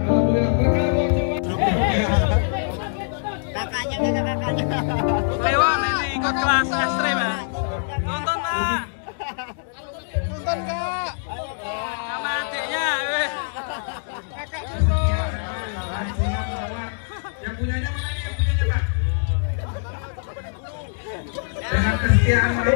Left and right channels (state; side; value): silent; right; digital silence